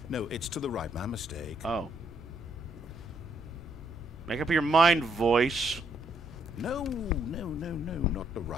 no, it's to the right. My mistake. Oh. Make up your mind, voice. No, not the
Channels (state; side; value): normal; both; correlation 0.73